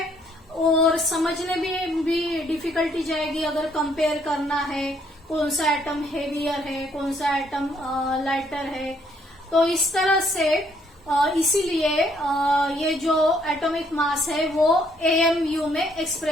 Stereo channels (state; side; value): normal; both; correlation 0.68